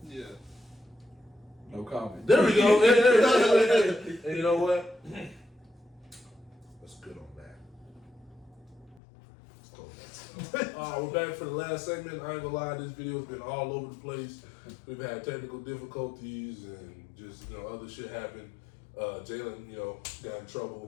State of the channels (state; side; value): drops out; right; at 9.0 s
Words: Yeah. No comment. There we go. And you know what? That's good on that. Let's close that. We're back for the last segment. I ain't gonna lie, this video has been all over the place. We've had technical difficulties and just, other shit happened. Jalen, got in